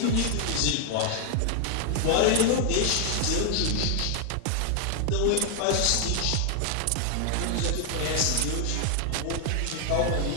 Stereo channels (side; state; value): both; different; correlation 0.00